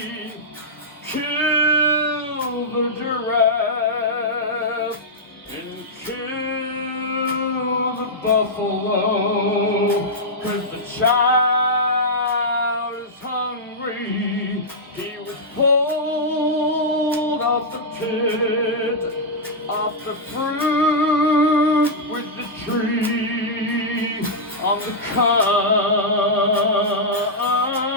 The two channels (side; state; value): both; normal; correlation -0.09